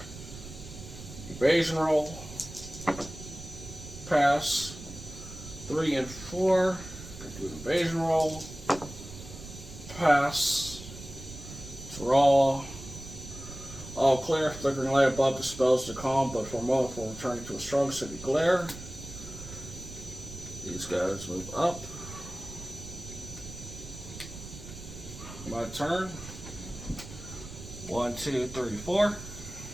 Evasion roll. Pass. 3 and 4. Do an evasion roll. Pass. Draw. All clear. Flickering light above dispels the calm, but for a moment before returning to a strong city glare. These guys move up. My turn. 1, 2, 3, 4.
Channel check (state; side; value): noise; right; rumble, 13 dB below the sound